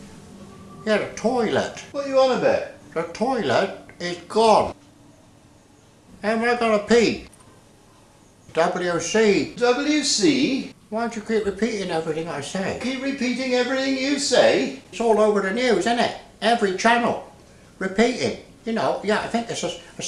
Yeah, the toilet. What are you on about? The toilet is gone. How am I gonna pee? WC. WC? Why don't you keep repeating everything I say? Keep repeating everything you say? It's all over the news, isn't it? Every channel. Repeating. You know, yeah, I think it's a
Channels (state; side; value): identical; both; correlation 1.00